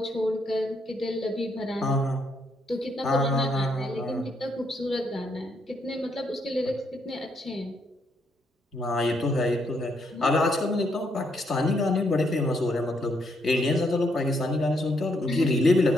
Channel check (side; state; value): both; normal; correlation 0.75